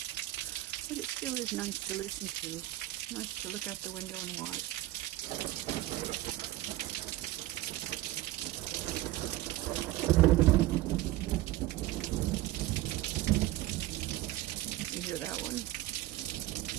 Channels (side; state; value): left; quieter; 16.4 dB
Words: But it still is nice to listen to. Nice to look out the window and watch. You hear that one?